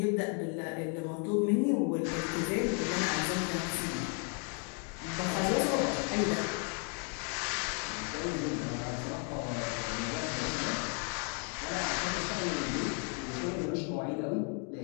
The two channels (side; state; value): right; quieter; 39.7 dB